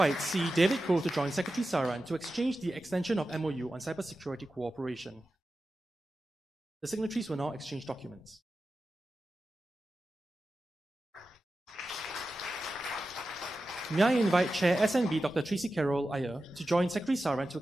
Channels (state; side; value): normal; both; correlation 0.93